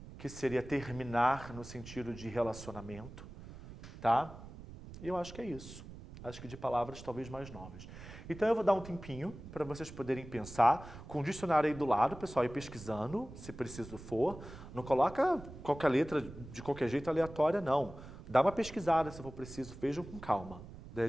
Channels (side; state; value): right; noise; rumble, 14 dB below the sound